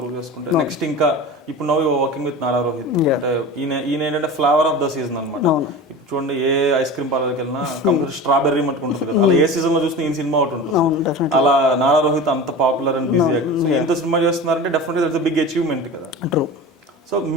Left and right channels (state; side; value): normal; both; correlation 0.32